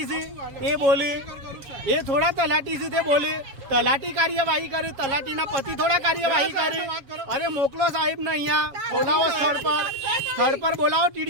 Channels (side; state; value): left; late; 7.3 ms